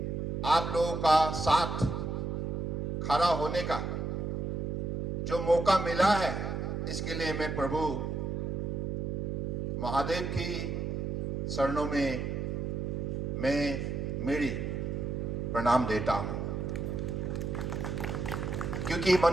आप लोगों का साथ खड़ा होने का जो मौका मिला है, इसके लिए मैं प्रभु महादेव की शरणों में मैं मेरी प्रणाम देता हूं, क्योंकि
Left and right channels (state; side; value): noise; right; hum, 2 dB below the sound